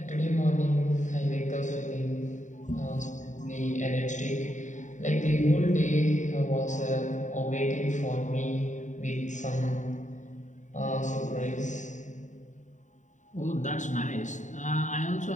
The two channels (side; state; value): right; late; 0.36 ms